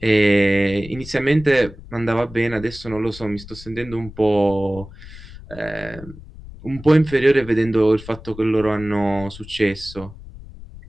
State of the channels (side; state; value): left; noise; rumble, 16 dB below the sound